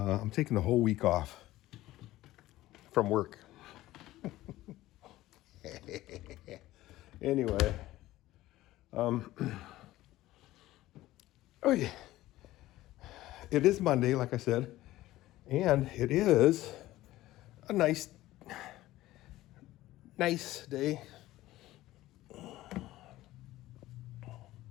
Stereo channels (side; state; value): right; quieter; 16.2 dB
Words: taking the whole week off from work. Anyway, oh yeah, it is Monday, like I said, and it is a nice day.